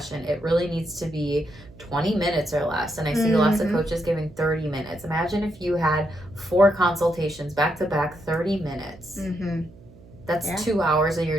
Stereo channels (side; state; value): right; noise; hum, 22 dB below the sound